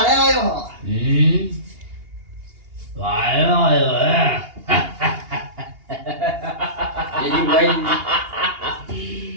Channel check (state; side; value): late; left; 2.8 ms